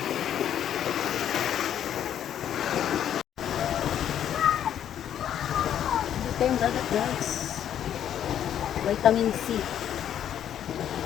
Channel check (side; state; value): right; quieter; 10.1 dB